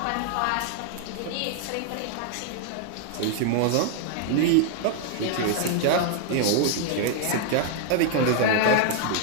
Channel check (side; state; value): both; different; correlation 0.00